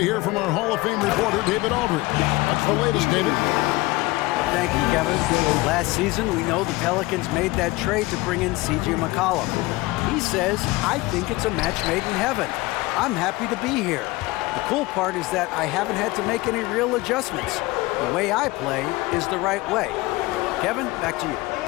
hear from our Hall of Fame reporter, David Aldridge. What's the latest, David? Thank you, Kevin. Last season, we know the Pelicans made that trade to bring in C.J. McCollum. He says, I think it's a match made in heaven. I'm happy to be here. The cool part is that I haven't had to make any real adjustments. The way I play is the right way. Kevin, back to you.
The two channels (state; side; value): quieter; right; 21.1 dB